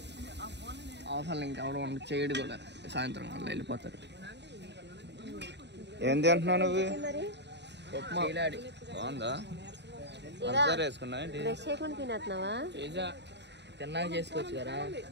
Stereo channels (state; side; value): late; left; 0.50 ms